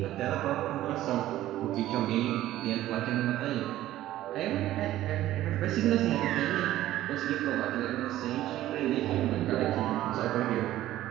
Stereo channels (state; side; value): quieter; left; 14.2 dB